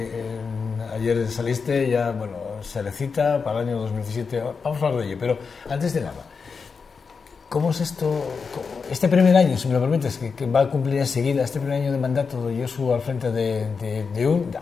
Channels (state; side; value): quieter; right; 5.3 dB